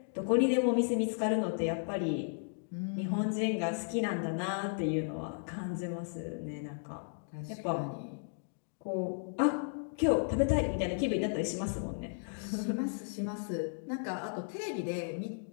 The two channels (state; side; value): silent; right; digital silence